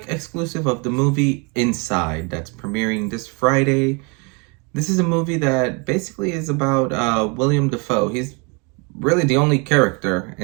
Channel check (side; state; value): left; quieter; 32.1 dB